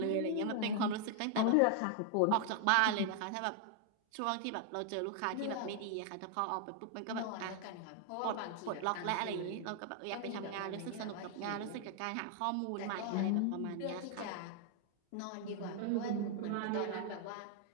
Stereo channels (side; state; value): both; different; correlation 0.00